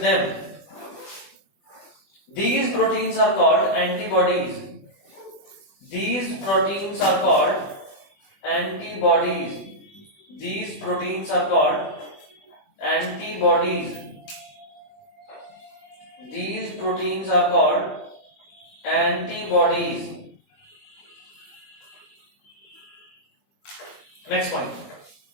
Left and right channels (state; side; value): late; right; 20 ms